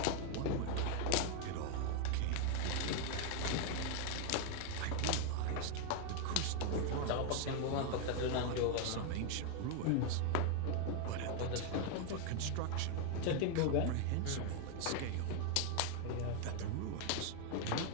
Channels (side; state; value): both; different; correlation 0.00